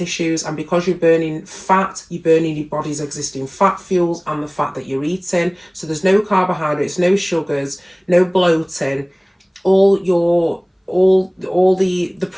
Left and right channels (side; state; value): both; identical; correlation 1.00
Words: and because you're burning fat, you're burning your body's existing fat fuels and the fat that you're eating. So there's no carbohydrates, no sugars, no bloating. All the